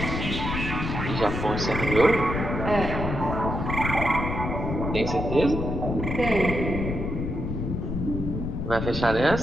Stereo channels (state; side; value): noise; left; rumble, 3 dB below the sound